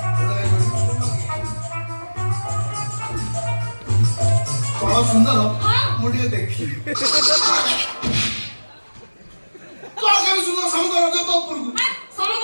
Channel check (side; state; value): both; inverted; correlation -1.00